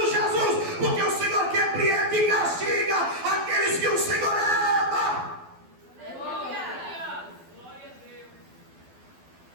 Jesus, porque o Senhor repreende e castiga aqueles que o Senhor ama. Glória. Glória a Deus.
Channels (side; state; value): left; late; 12 ms